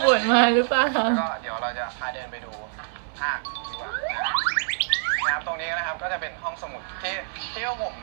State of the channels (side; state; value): left; silent; 59 dB below the other